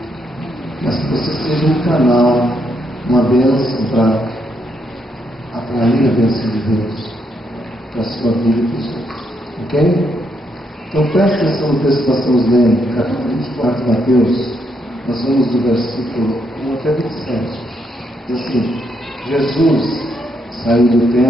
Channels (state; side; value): normal; both; correlation 0.77